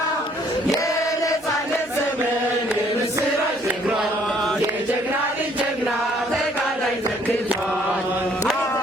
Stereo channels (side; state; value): right; noise; hum, 28 dB below the sound